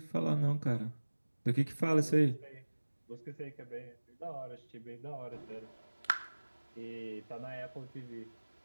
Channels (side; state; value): both; inverted; correlation -1.00